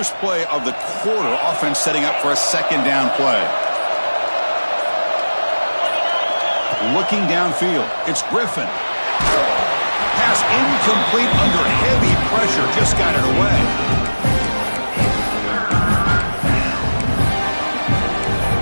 play of the quarter. Offense setting up for a 2nd down play. Looking downfield. It's Griffin. Pass incomplete under heavy pressure. Just got it away.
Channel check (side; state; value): both; inverted; correlation -1.00